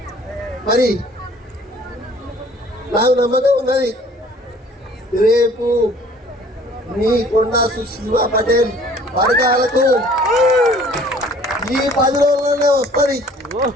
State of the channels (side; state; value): both; normal; correlation 0.53